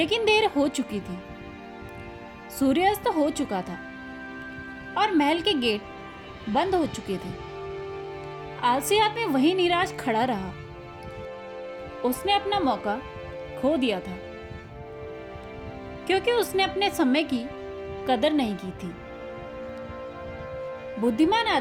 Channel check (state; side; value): identical; both; correlation 1.00